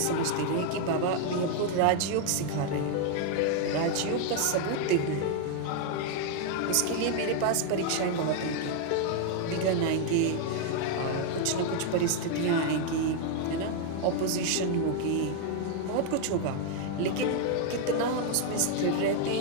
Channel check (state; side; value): different; both; correlation 0.00